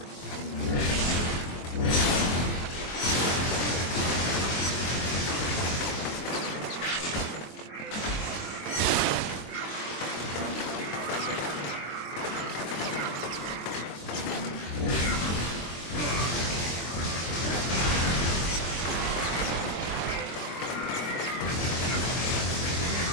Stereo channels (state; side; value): late; right; 23 ms